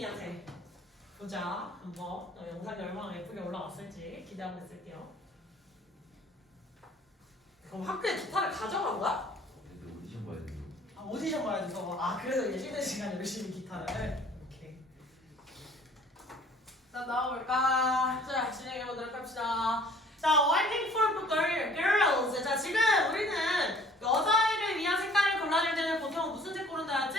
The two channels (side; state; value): both; normal; correlation 0.54